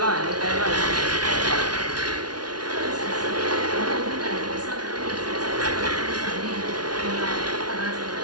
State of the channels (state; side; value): late; left; 0.69 ms